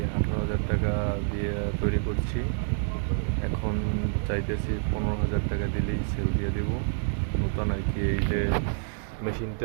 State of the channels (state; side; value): silent; left; digital silence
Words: 18,000 টাকা দিয়ে তৈরি করছি। এখন চাইতেছি 15,000 টাকা দিলেই সেল দিয়ে দেবো। নতুন আর কি, এই যে